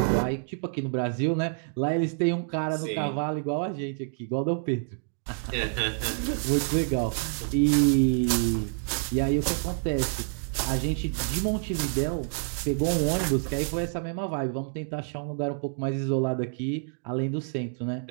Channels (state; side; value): silent; left; 59 dB below the other